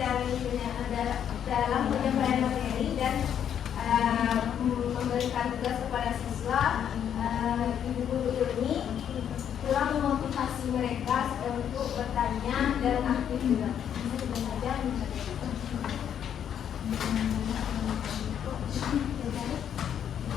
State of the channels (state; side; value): quieter; right; 9.1 dB